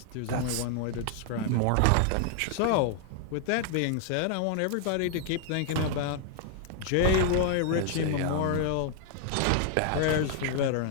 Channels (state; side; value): different; both; correlation 0.00